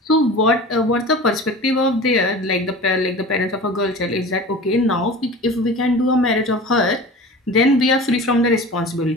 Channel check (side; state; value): both; normal; correlation 0.36